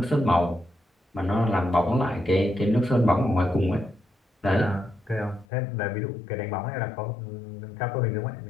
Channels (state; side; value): drops out; right; at 5.5 s